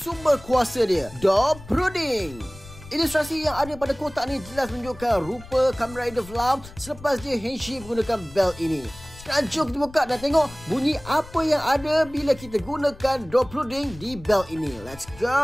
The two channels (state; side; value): noise; left; rumble, 18 dB below the sound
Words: kuasa dia. Door Puding. Ilustrasi yang ada pada kotak ni jelas menunjukkan rupa Kamen Rider Flam selepas dia Henshin menggunakan belt ini. Sekarang jom kita buka dan tengok bunyi apa yang ada bila kita gunakan door puding di belt ini. Let's